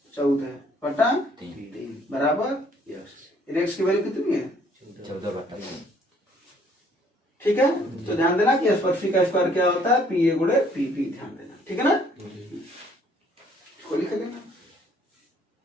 14/3 बराबर एक्स की वैल्यू कितनी है, 14/3 ठीक है, तो ध्यान देना कि स्पर्शी का स्क्वायर क्या होता है, पी ए गुणे पी पी, ध्यान देना, ठीक है ना, इसको लिख देना।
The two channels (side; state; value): both; normal; correlation 0.62